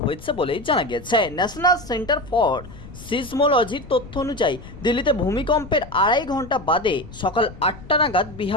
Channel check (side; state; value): left; noise; rumble, 16 dB below the sound